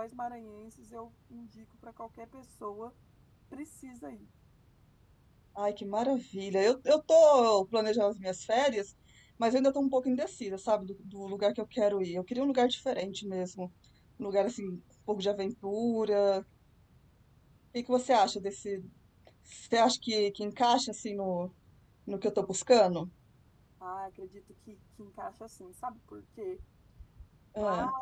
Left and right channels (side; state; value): both; identical; correlation 1.00